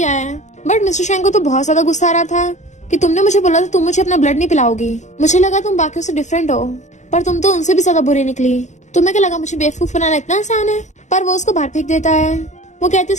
है। बट मिस्टर शेंग को तो बहुत ज्यादा गुस्सा आ रहा था कि तुमने मुझे बोला था तुम मुझे अपना ब्लड नहीं पिलाओगी, मुझे लगा तुम बाकियों से डिफरेंट हो, पर तुम तो उनसे भी ज्यादा बुरी निकली। तुम्हें क्या लगा मुझे बेवकूफ बनाना इतना आसान है। पर वो उसको बाहर फेंक देता है। वो कहती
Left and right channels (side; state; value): right; late; 0.34 ms